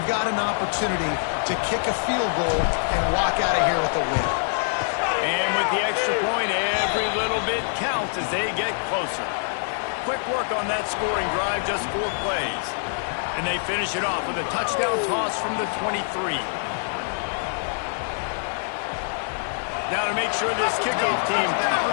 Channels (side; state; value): right; silent; digital silence